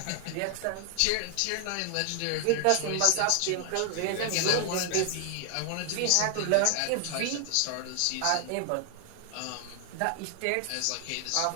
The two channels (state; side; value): different; both; correlation 0.00